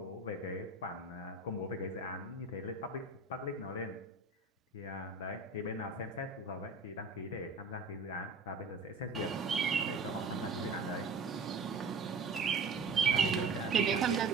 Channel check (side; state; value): left; quieter; 3.8 dB